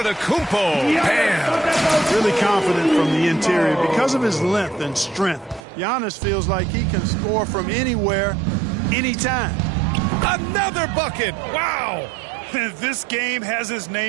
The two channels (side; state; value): left; drops out; at 5.7 s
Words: Bam. Really confident from the interior because of his length and strength. Giannis feels like he can score from anywhere, anytime. Another bucket. Wow. This game has his